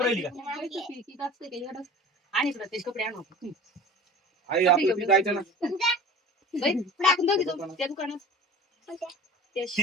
राहिली का किती असते ते एवढं. आणि इकडं त्याचे कपडे आणू आपण. आई आपलं जायचं ना बाई, टाकून जाऊ तिथं, त्या दुकानात. त्या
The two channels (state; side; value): normal; both; correlation 0.39